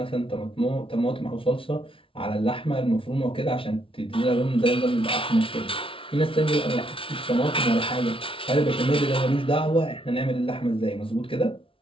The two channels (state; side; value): late; right; 0.25 ms